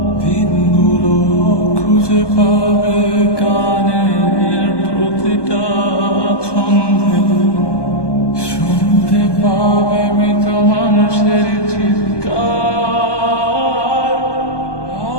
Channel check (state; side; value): late; right; 1.2 ms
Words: দিনগুলো খুঁজে পাবে গানের প্রতিটা ছন্দে, শুনতে পাবে মৃত মানুষের চিৎকার।